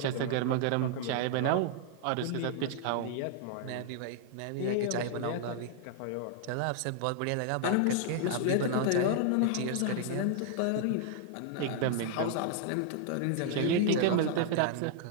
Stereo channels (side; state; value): both; different; correlation -0.01